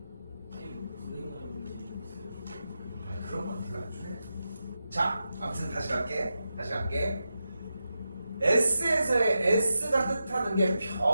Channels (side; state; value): both; inverted; correlation -0.89